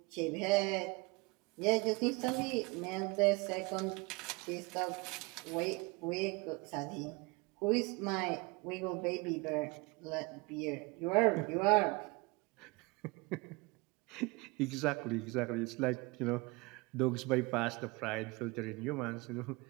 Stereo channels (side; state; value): left; quieter; 26.0 dB